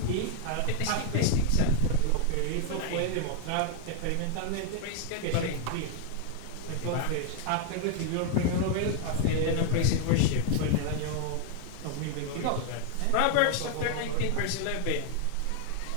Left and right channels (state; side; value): different; both; correlation 0.00